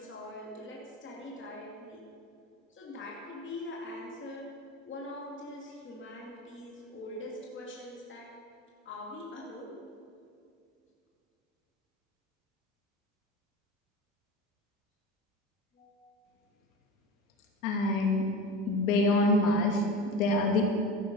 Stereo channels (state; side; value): normal; both; correlation 0.30